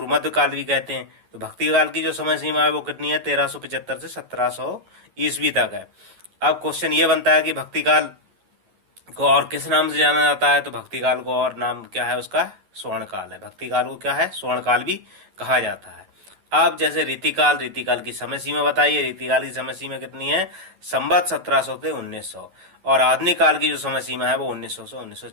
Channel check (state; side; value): late; left; 11 ms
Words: मध्य काल भी कहते हैं। तो भक्ति काल की जो समय सीमा है वो कितनी है, 1375 से 1700 ईस्वी तक है। अब क्वेश्चन ये बनता है कि भक्ति काल को और किस नाम से जाना जाता है। तो भक्ति काल को और नाम क्या है उसका, स्वर्ण काल है। भक्ति काल को क्या है, स्वर्ण काल भी कहा जाता है। अब जैसे रीतिकाल, रीतिकाल की समय सीमा बताइए। रीतिकाल की समय सीमा कितनी है, संवत 1700 से 1900। और आधुनिक काल की जो समय सीमा है वो 1900 से